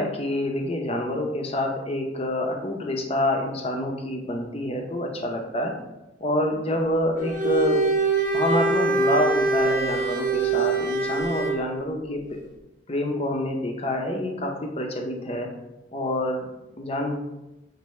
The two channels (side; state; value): both; normal; correlation 0.35